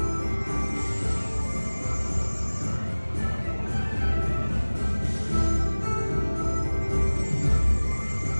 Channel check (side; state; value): both; inverted; correlation -1.00